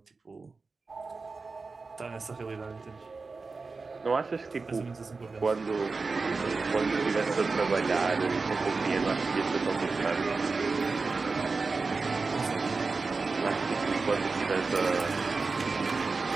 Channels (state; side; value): quieter; left; 4.2 dB